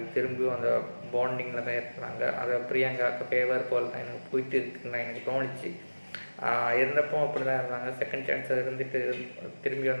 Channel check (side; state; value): both; inverted; correlation -1.00